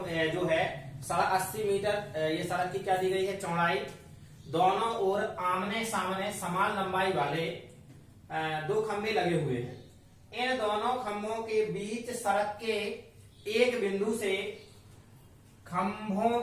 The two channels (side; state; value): both; identical; correlation 1.00